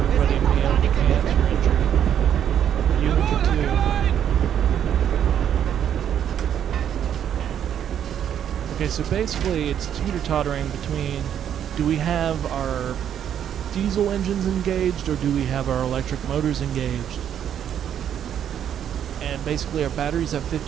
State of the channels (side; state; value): left; quieter; 9.5 dB